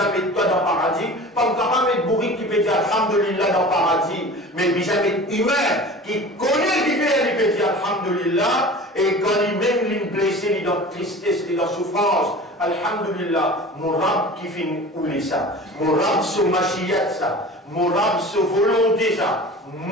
met toi dans le paradis. Pas capable de mettre bourrique qui peut dire Alhamdulillah dans le paradis. Mais puis ça met humain qui connaît le différent, il peut dire Alhamdulillah. Et quand il même il est blessé, il est dans tristesse, il est dans souffrance. Alhamdulillah, mon rab qui finit ouler ça. Mon rab se machiyat ça. Mon rab se volonté ça.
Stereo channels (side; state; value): both; normal; correlation 0.38